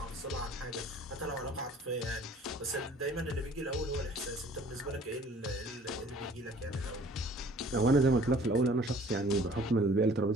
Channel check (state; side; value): normal; both; correlation 0.52